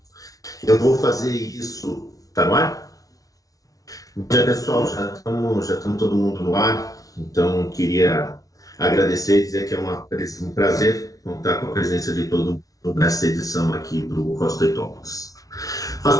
Eu vou fazer isso. Tá no ar? Bom dia, pessoal. Já estamos todo mundo no ar. Então, queria agradecer e dizer que é um prazer contar com a presença de todo mundo nessa edição aqui do Rostoi Talks.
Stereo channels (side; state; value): right; late; 0.18 ms